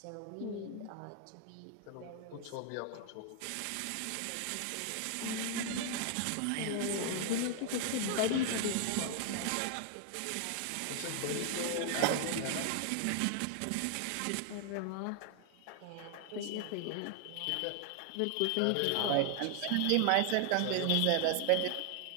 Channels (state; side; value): different; both; correlation 0.00